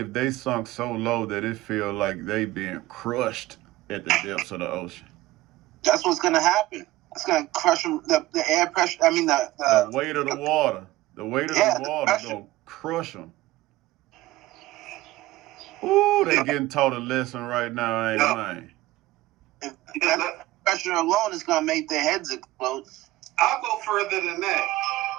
they sunk so low that it feel like they being crushed at the depths of the ocean? That's what's gonna happen. It's gonna crush them. The air pressure. I mean the weight of the water. The weight of the water gonna crush them. Ooh, they getting taught a lesson right now, ain't man? That pressure alone is gonna make their heads explode. I'll go further than that.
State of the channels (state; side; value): quieter; left; 17.5 dB